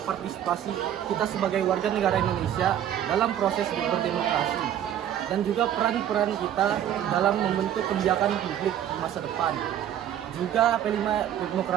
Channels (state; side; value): quieter; left; 10.7 dB